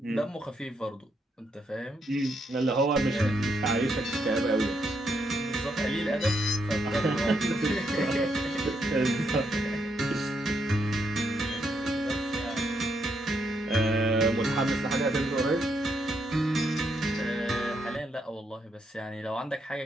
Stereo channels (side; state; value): both; normal; correlation 0.78